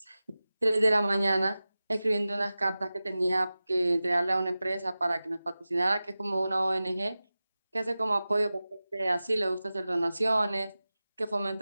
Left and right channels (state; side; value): inverted; both; correlation -0.96